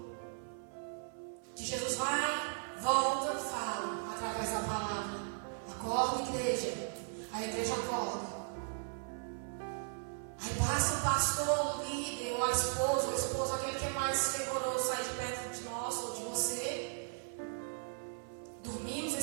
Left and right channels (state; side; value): silent; left; 53 dB below the other